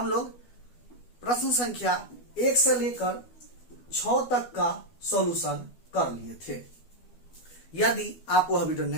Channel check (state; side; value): late; right; 12 ms